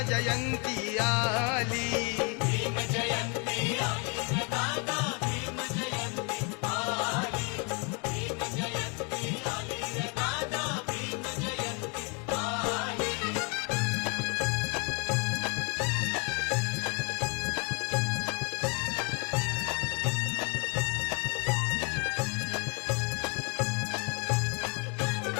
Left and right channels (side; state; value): right; quieter; 34.2 dB